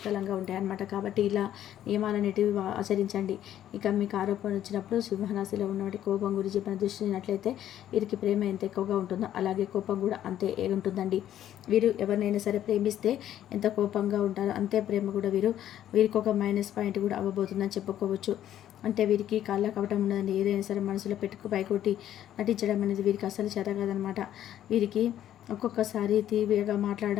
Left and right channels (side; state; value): right; quieter; 11.5 dB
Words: ఉంటాయి అన్నమాట. కాబట్టి ఇలా నియమాలన్నిటివి ఆచరించండి. ఇక మీకు ఆరోపణ వచ్చినప్పుడు సింహరాశిలో ఉన్నటువంటి కోపం గురించి మనం దృష్టినట్లయితే వీరికి ప్రేమ ఎంత ఎక్కువగా ఉంటుందో అలాగే కోపం కూడా అంతే ఉంటుందండి. వీరు ఎవరినైనా సరే ప్రేమిస్తే ఎంత కోపంగా ఉంటారో అంతే ప్రేమ కూడా వీరికి ఒక మైనస్ పాయింట్ కూడా అవ్వబోతుందని చెప్పుకోవచ్చు. అంటే వీరికి కాళ్ళ కవటం ఉండదండి. ఏదైనా సరే మనసులో పైకొట్టి నటించడం అనేది వీరికి అసలు చేత కాదనమాట. వీరికి ఒక్కొక్కసారి తీవ్రంగా